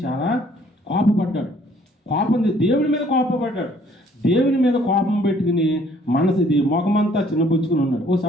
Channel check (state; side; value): normal; both; correlation 0.60